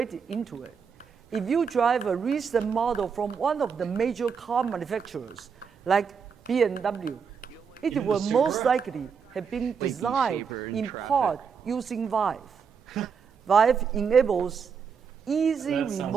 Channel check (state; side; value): quieter; left; 6.2 dB